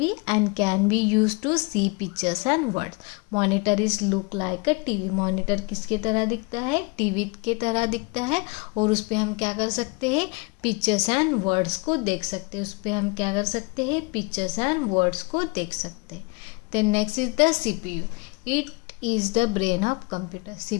and can be used to see pictures and words. Monitor is look like a TV. Monitor किसके तरह दिखता है? TV के तरह दिखता है और उस पर हम क्या कर सकते हैं? पिक्चर्स एंड वर्ड्स को देख सकते हैं। उस पर हम क्या कर सकते हैं? पिक्चर्स एंड वर्ड्स को देख सकते हैं। Then next is the CPU. It is the brain of computer.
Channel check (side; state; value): right; quieter; 28.6 dB